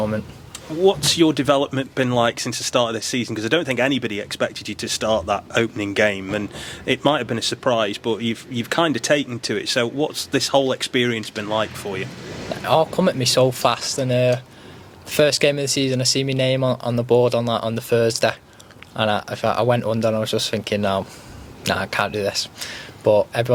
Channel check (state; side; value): identical; both; correlation 1.00